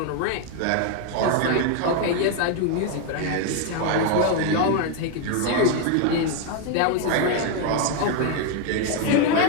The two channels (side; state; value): both; different; correlation 0.01